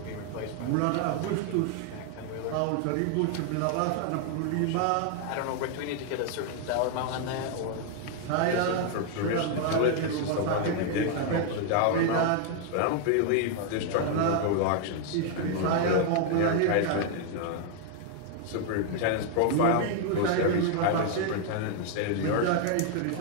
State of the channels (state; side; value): different; both; correlation 0.00